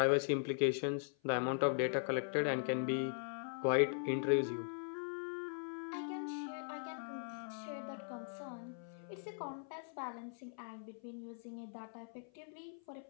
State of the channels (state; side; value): silent; right; 51 dB below the other